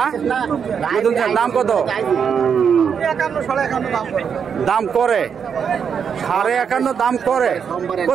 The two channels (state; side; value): quieter; left; 7.0 dB